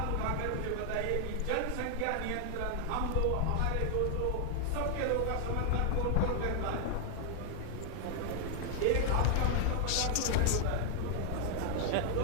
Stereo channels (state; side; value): different; both; correlation 0.00